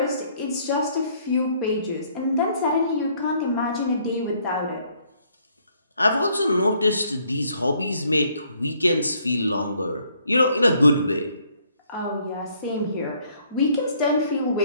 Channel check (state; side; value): inverted; both; correlation -0.66